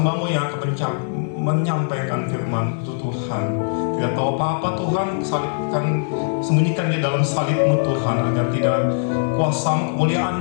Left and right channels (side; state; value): right; silent; 65 dB below the other